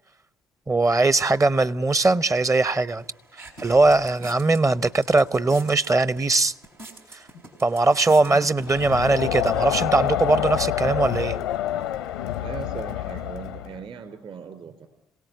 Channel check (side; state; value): both; normal; correlation 0.76